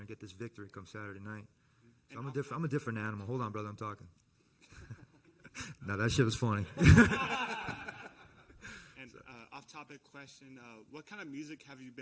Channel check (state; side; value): identical; both; correlation 1.00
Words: and get this victory come Saturday night. So I'm a different animal. Hold on, brother, I'm talking. No, that shit was funny. And off-topic question, what kind of music have you